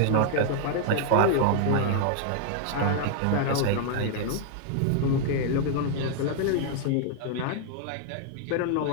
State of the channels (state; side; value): different; both; correlation 0.00